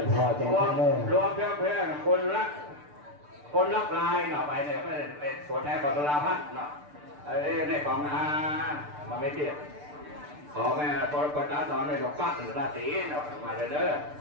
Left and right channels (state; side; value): late; left; 6.8 ms